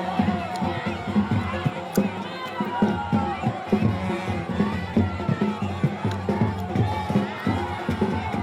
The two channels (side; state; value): both; identical; correlation 1.00